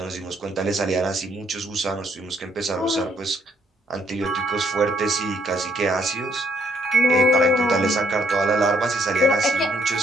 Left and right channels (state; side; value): normal; both; correlation 0.69